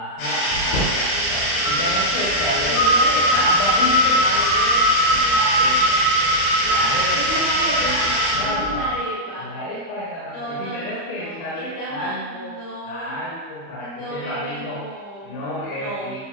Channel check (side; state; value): right; late; 32 ms